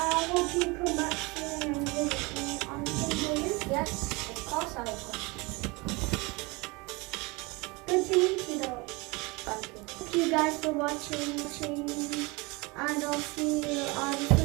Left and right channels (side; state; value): left; quieter; 25.9 dB